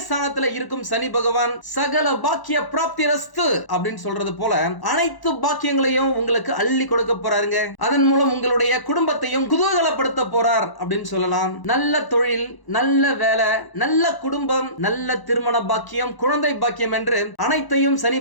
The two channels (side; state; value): right; late; 1.0 ms